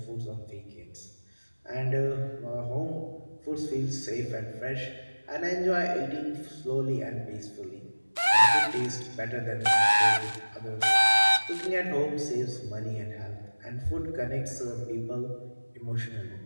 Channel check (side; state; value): both; inverted; correlation -1.00